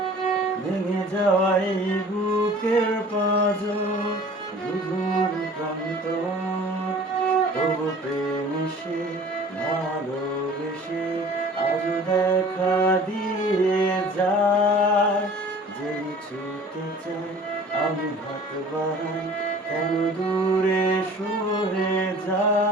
ভেঙে যাওয়াই বুকের পাঁজর রুধুর কান্ত তবু প্রেমিসে ভালোবেসে আজ দেখা দিয়ে যায় যে ছুটে চাই আমি হাত বাড়াই কেন দূরে সরে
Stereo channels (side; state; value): both; normal; correlation 0.46